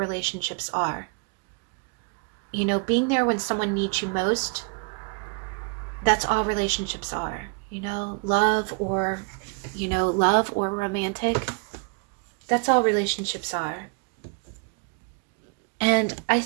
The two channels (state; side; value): quieter; left; 33.6 dB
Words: are. You know, being there when someone needs you most, that's all relationships are. You know, love or romantic, that's all relationships are. And I